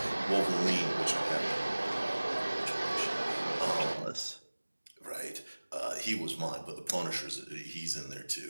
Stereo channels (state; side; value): inverted; both; correlation -1.00